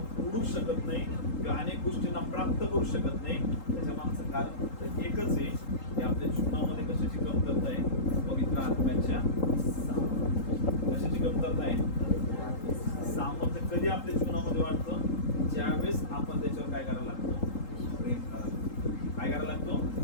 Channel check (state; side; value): late; right; 3.8 ms